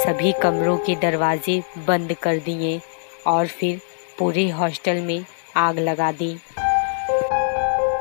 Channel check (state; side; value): silent; right; digital silence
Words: कमरों के दरवाजे बंद कर दिए और फिर पूरे हॉस्टल में आग लगा दी,